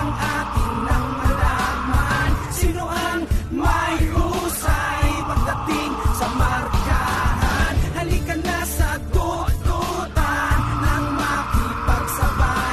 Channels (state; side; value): identical; both; correlation 1.00